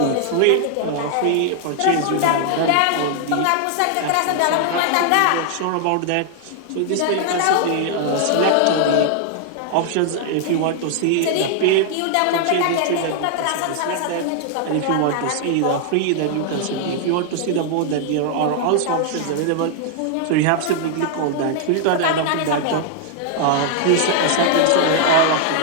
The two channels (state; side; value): different; both; correlation 0.00